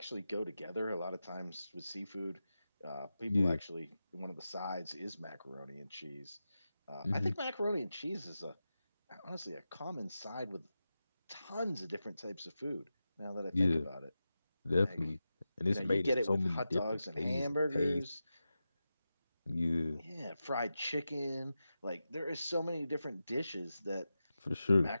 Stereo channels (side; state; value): both; inverted; correlation -0.92